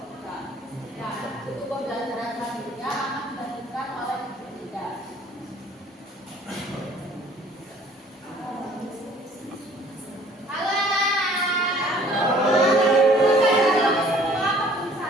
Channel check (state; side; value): normal; both; correlation 0.55